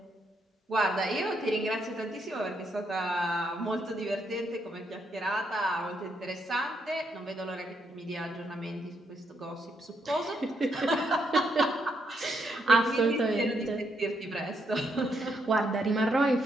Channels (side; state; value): both; normal; correlation 0.76